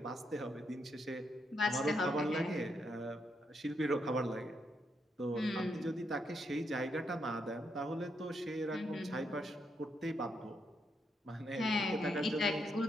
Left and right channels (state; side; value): normal; both; correlation 0.79